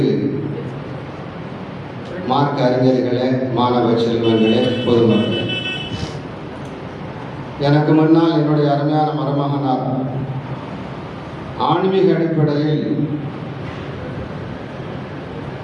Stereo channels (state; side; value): identical; both; correlation 1.00